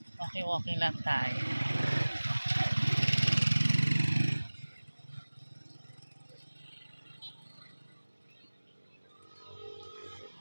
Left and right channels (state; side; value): inverted; both; correlation -1.00